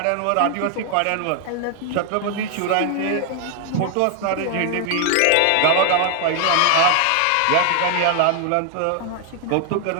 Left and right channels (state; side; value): different; both; correlation 0.00